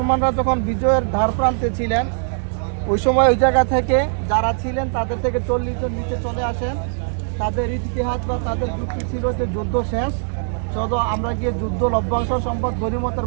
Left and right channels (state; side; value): silent; left; 62 dB below the other